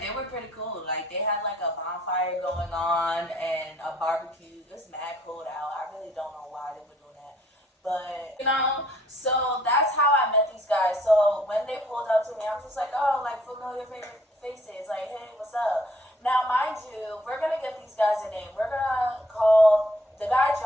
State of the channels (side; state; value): both; normal; correlation 0.63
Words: they were pretty cool. Like they had like a bonfire going on and a barbecue. It was mad cold out. I really don't know why they were doing that. But you know, so that's how I met these guys. So when they pulled up to me, I'm just like, oh, like familiar faces. Like, hey, what's up? Now, mind you, we're gonna give these guys a name. We're gonna call the guy